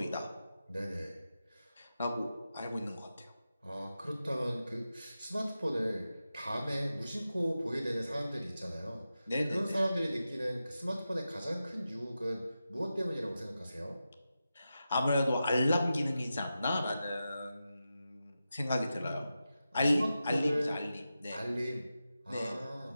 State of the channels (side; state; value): both; inverted; correlation -0.91